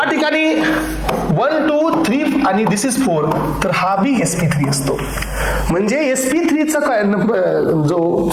ठिकाणी 1 2 3 आणि दिस इज 4, तर हा बी sp3 असतो. म्हणजे sp3 चा काय जो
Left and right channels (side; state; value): both; identical; correlation 1.00